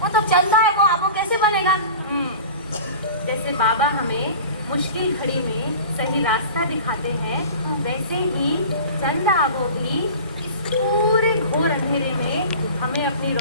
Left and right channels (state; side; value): inverted; both; correlation -0.38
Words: वो तो चंदा है, वो आबो कैसे बनेगा? जैसे बाबा हमें मुश्किल घड़ी में सही रास्ता दिखाते हैं वैसे ही चंदा आबो भी इस पूरे घोर अंधेरे में हमें अपनी